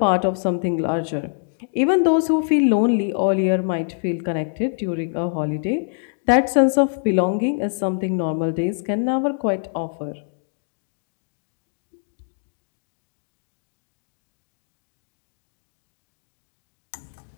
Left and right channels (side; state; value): right; silent; digital silence